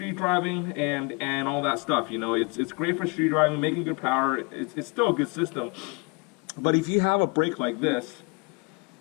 driving and all that stuff. You know, it's great for street driving, making good power. It's still a good system. But if you have a brake like this,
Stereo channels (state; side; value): quieter; right; 31.2 dB